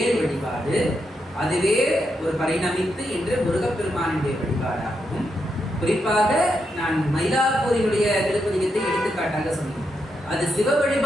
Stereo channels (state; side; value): normal; both; correlation 0.83